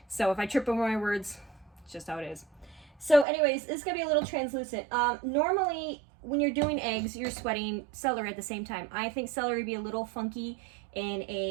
So if I trip over my words, it's just how it is. So anyways, this is going to be a little translucent. Normally, when you're doing eggs, you're sweating celery at the same time. I think celery would be a little funky in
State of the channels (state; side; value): drops out; left; at 3.2 s